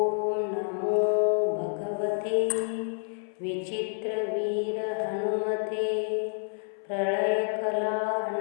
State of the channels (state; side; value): silent; right; 59 dB below the other